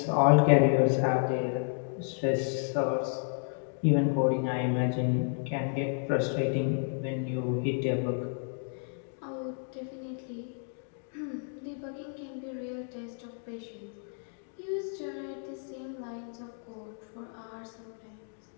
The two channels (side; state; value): right; silent; 56 dB below the other